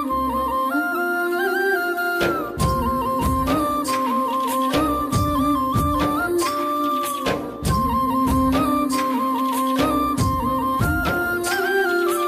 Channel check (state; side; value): identical; both; correlation 1.00